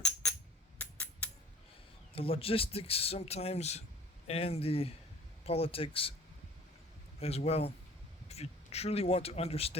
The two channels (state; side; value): normal; both; correlation 0.49